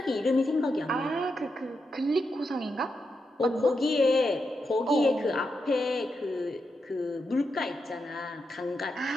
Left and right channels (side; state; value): both; normal; correlation 0.85